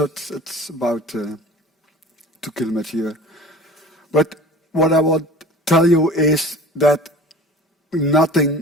It's about 2 kilometers here. But what I want to tell you is that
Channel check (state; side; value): normal; both; correlation 0.41